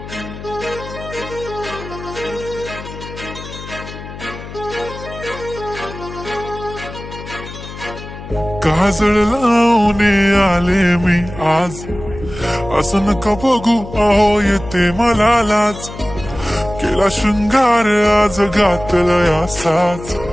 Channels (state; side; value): noise; left; hum, 12 dB below the sound